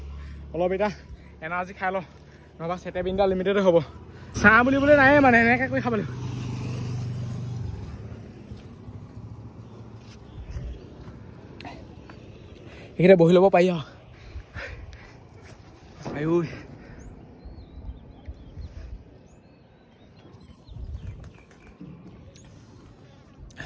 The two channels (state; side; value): identical; both; correlation 1.00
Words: অলপ এতিয়া এনাৰ্জি খাই লওঁ নহবা চেটেবিনটা লিমিটেডে হ'ব চাহ বুলিবলৈ নাই মানে এনেকৈ কৰি খাব লাগিব এইখিনিতে বহি ল'ব পাৰি আৰু